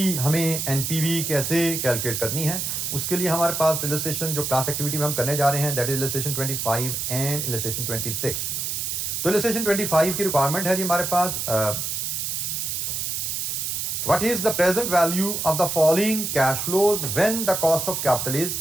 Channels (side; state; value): right; noise; hiss, 2 dB below the sound